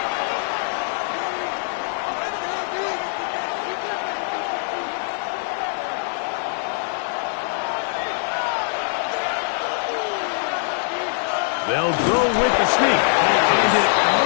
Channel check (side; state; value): right; silent; 62 dB below the other